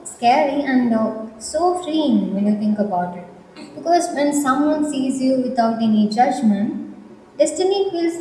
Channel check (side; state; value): both; identical; correlation 1.00